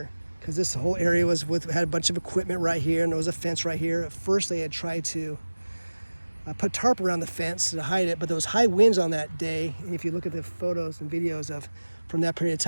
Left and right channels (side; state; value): both; inverted; correlation -1.00